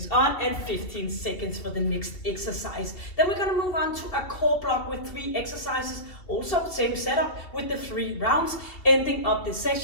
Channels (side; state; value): right; late; 2.9 ms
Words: on and 15 seconds for the next exercise. Then we're going to move on to a core block with 3 exercises, also same setup with the 3 rounds, ending up this